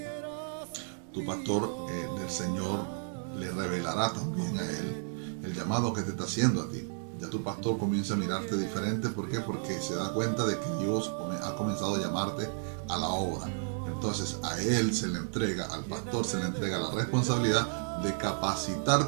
Tu pastor del Señor le revelará también a él el llamado que te está haciendo a ti. Ya tu pastor comienza a mirarte diferente. ¿Por qué? Porque se da cuenta de que Dios ha comenzado a llamarte a la obra. Entonces a él se le entrega, al pastor se le entrega la responsabilidad de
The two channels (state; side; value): silent; left; digital silence